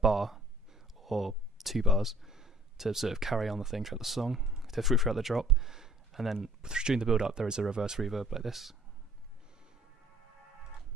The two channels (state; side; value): normal; both; correlation 0.54